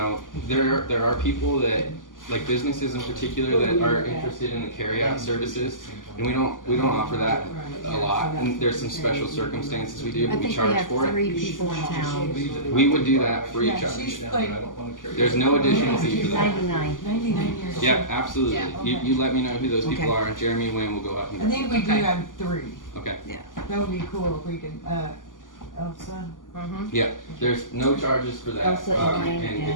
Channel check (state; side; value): late; right; 0.88 ms